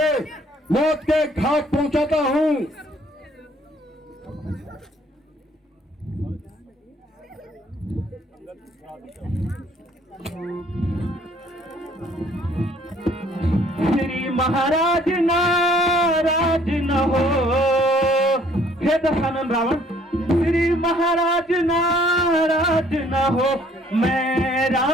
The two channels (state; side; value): normal; both; correlation 0.60